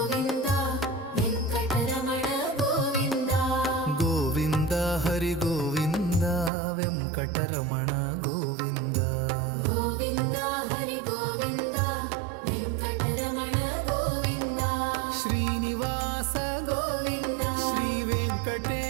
ವೆಂಕಟರಮಣ ಗೋವಿಂದ. ಗೋವಿಂದ ಹರಿ ಗೋವಿಂದ ವೆಂಕಟರಮಣ ಗೋವಿಂದ. ಗೋವಿಂದ ಹರಿ ಗೋವಿಂದ ವೆಂಕಟರಮಣ ಗೋವಿಂದ. ಶ್ರೀನಿವಾಸ ಗೋವಿಂದ ಶ್ರೀ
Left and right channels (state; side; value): drops out; left; at 6.5 s